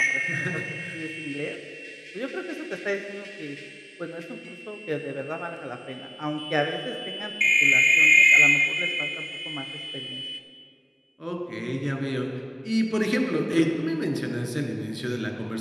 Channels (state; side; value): identical; both; correlation 1.00